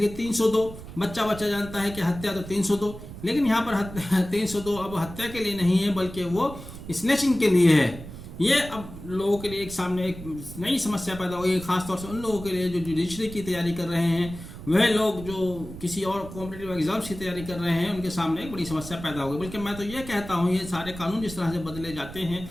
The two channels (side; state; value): right; noise; rumble, 13 dB below the sound